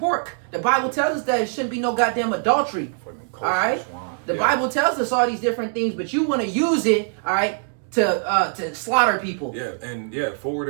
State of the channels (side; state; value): left; silent; digital silence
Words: The Bible tells us that it shouldn't be no goddamn adultery. All right, the Bible tells us all these different things, but you want to use it, all right, to slaughter people. Yeah, and yeah,